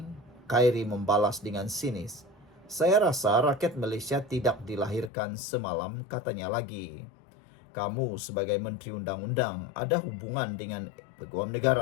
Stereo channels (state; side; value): drops out; right; at 5.1 s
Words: membalas dengan sinis, saya rasa rakyat Malaysia tidak dilahirkan semalam, katanya lagi. Kamu sebagai Menteri Undang-Undang ada hubungan dengan Peguam